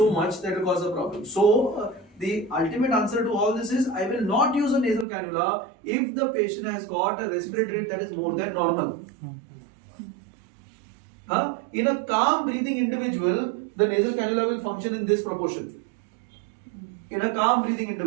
much that will cause a problem. So the ultimate answer to all this is I will not use a nasal cannula if the patient has got a respiratory rate that is more than normal. In a calm breathing individual, the nasal cannula will function in this proportion. In a calm breathing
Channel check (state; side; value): drops out; left; at 5.1 s